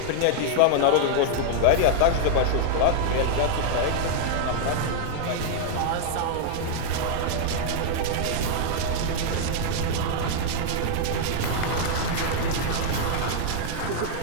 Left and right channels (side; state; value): both; different; correlation -0.01